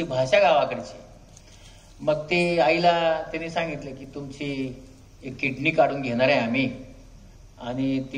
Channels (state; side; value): identical; both; correlation 1.00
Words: भाषा गावाकडची. मग ते आईला त्यांनी सांगितलं की तुमची एक किडनी काढून घेणार आहे आम्ही, आणि ती